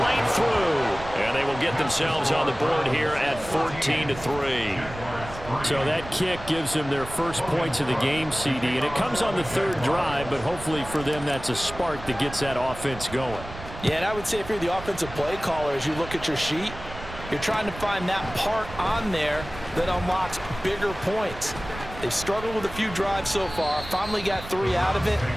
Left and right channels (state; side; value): noise; right; rumble, 13 dB below the sound